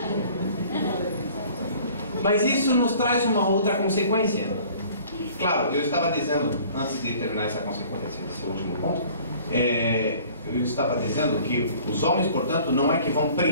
Mas isso nos traz uma outra consequência. Claro, eu estava dizendo, antes de terminar essa consequência, esse último ponto, eu estava dizendo que os homens, portanto, não é que vão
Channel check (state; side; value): inverted; both; correlation -0.51